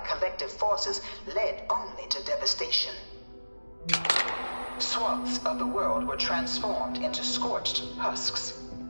forces led only to devastation. Swaths of the world were transformed into scorched husks,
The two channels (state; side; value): inverted; both; correlation -1.00